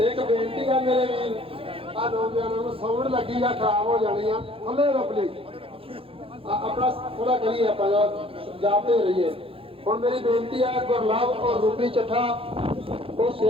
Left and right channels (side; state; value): left; late; 0.27 ms